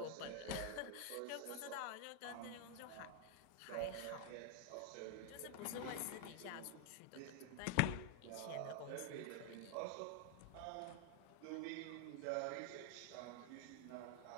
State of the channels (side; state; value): both; different; correlation 0.00